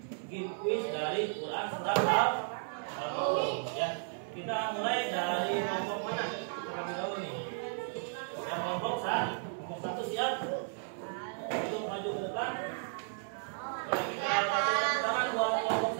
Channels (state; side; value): silent; left; 55 dB below the other